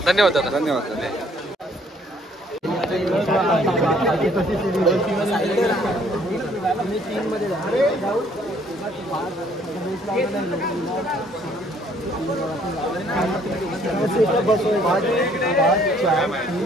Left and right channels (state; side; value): normal; both; correlation 0.62